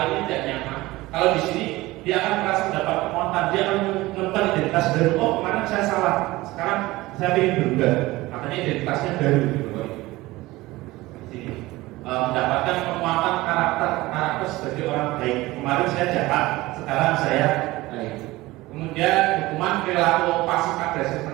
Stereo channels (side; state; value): left; quieter; 19.3 dB